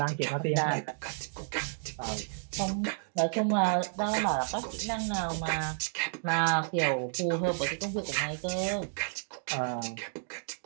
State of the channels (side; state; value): left; silent; digital silence